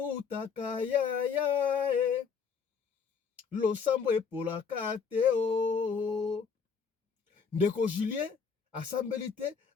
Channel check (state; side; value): quieter; right; 6.0 dB